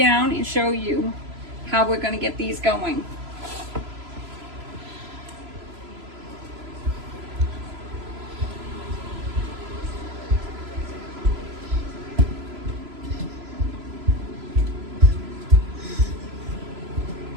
and show you how we're going to get these going.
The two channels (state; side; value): late; left; 3.0 ms